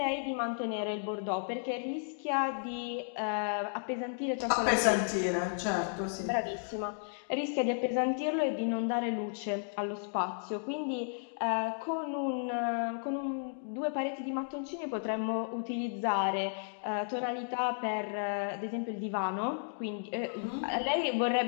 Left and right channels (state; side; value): silent; right; digital silence